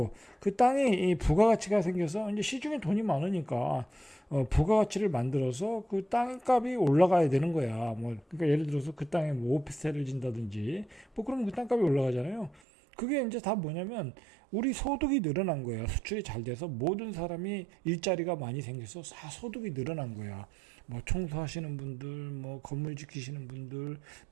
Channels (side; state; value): left; drops out; at 12.6 s